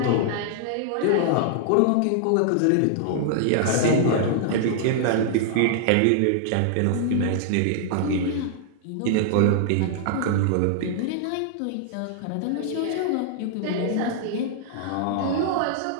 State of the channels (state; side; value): different; both; correlation -0.01